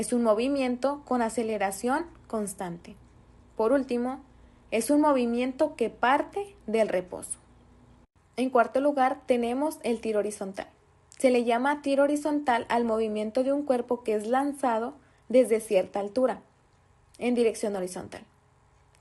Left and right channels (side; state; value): both; identical; correlation 1.00